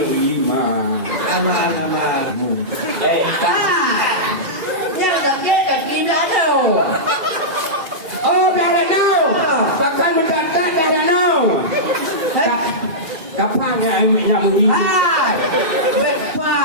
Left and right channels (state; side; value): late; left; 2.4 ms